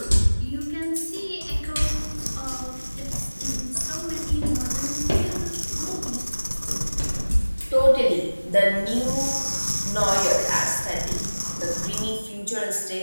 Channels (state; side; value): inverted; both; correlation -1.00